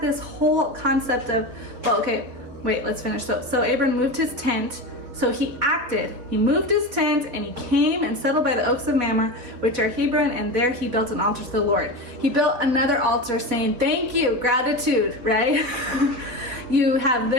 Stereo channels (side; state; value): left; late; 4.0 ms